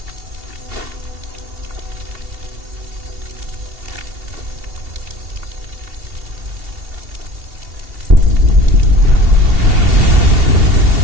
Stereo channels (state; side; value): late; left; 2.7 ms